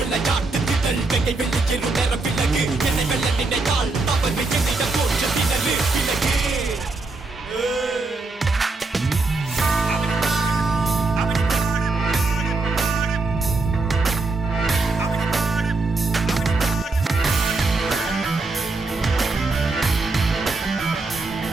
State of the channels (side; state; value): left; quieter; 3.5 dB